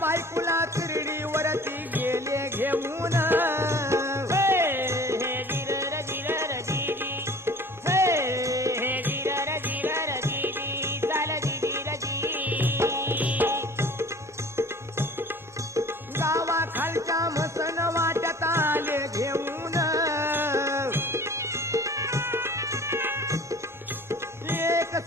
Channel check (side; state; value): both; normal; correlation 0.46